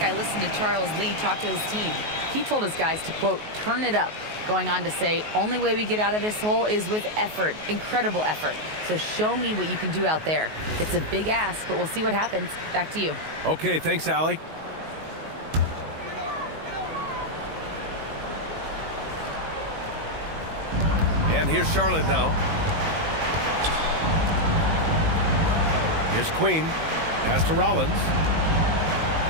listened to Charles Lee talk to his team. He told his guys to, quote, turn it up, going on to say, only way we get out of this hole is with effort, incredible effort. So show me what you can do out there. It's a big ask, but we'll see what happens. Back to you. Okay, thanks, Allie. And here's Charlotte now. Here's Queen. Pass to Rollins.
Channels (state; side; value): late; left; 19 ms